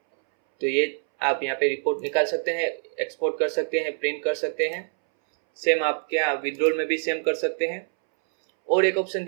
तो ये आप यहाँ पे रिपोर्ट निकाल सकते हैं, एक्सपोर्ट कर सकते हैं, प्रिंट कर सकते हैं। सेम आप क्या विड्रॉल में भी सेम कर सकते हैं। और एक ऑप्शन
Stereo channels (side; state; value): left; silent; 62 dB below the other